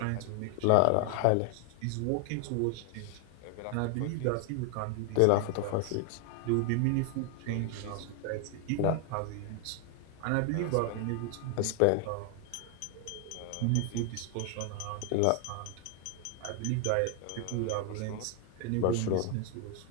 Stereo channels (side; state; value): both; different; correlation 0.00